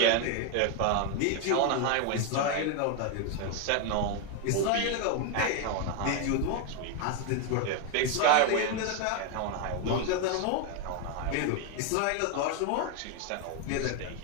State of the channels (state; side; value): different; both; correlation 0.01